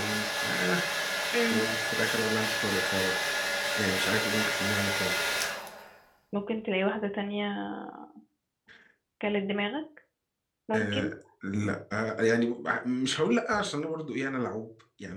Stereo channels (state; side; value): identical; both; correlation 1.00